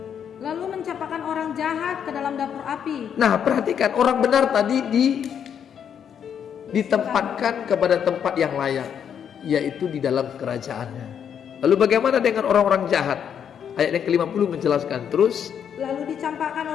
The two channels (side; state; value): right; quieter; 8.3 dB